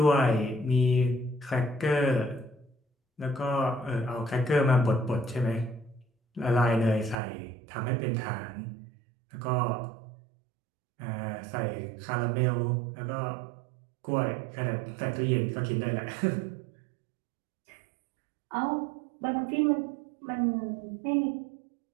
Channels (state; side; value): drops out; left; at 7.2 s